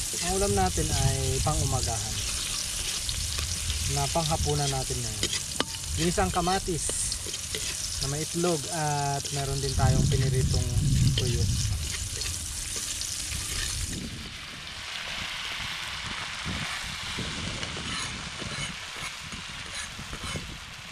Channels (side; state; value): both; identical; correlation 1.00